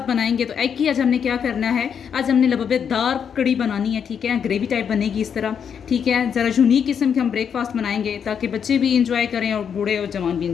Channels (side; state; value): right; quieter; 7.5 dB